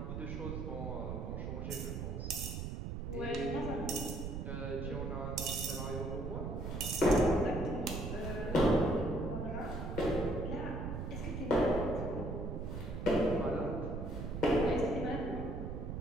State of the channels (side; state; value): right; noise; rumble, 4 dB below the sound